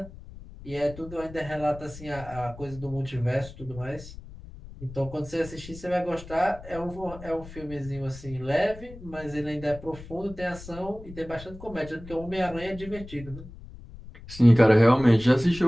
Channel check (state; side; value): noise; left; rumble, 16 dB below the sound